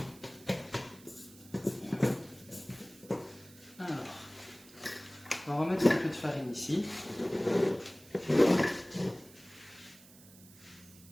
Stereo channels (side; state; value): right; noise; hiss, 22 dB below the sound